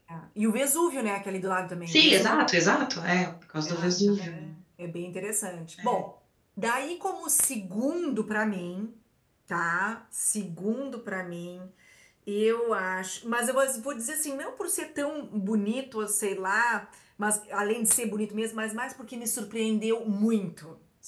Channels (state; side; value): identical; both; correlation 1.00